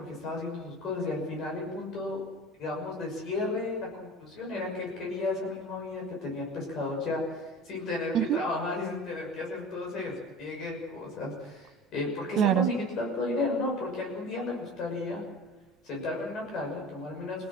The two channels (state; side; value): normal; both; correlation 0.37